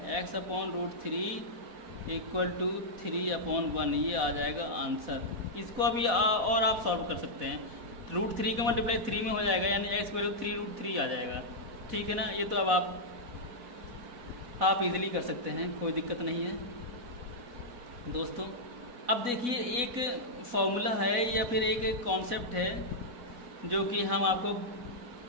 x upon root three equal to 3 upon 1, ये आ जाएगा आंसर। इसको अभी और आप सॉल्व कर सकते हैं, रूट थ्री का मल्टीप्लाई 3 में हो जाएगा, यानी x वैल्यू 3 रूट थ्री आ जाएगा, ठीक है ना। ये तो अब आप इजीली कर सकते हैं, कोई दिक्कत नहीं है दोस्तों। अब देखिए एक फॉर्मूला है या फिर एक कॉन्सेप्ट है जो कि हम आपको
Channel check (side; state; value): left; late; 4.1 ms